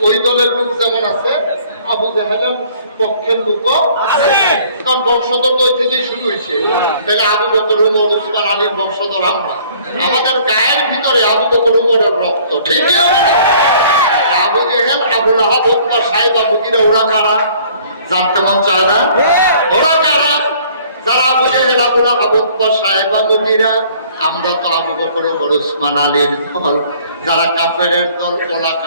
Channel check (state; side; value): inverted; both; correlation -0.56